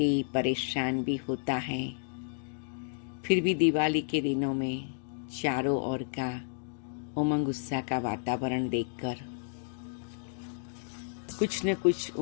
परेशान भी होता है, फिर भी दिवाली के दिनों में चारों ओर का उमंग उत्साह का वातावरण देखकर कुछ न कुछ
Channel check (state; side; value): silent; right; digital silence